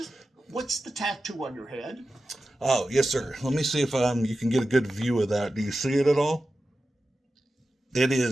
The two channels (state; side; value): normal; both; correlation 0.93